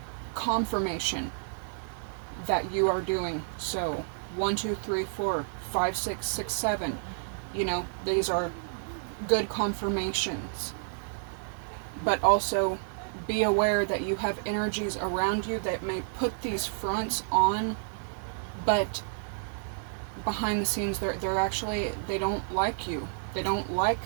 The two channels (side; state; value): left; silent; digital silence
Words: confirmation that you are doing so. 1, 2, 3, 4, 5, 6, 6, 7. These are good confirmations. But also be aware that you have energies around you that may put these fronts on, but behind the scenes they don't like you. They don't like